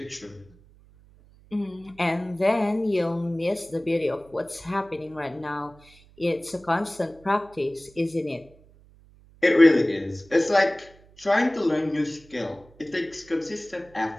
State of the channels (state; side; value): noise; right; hum, 26 dB below the sound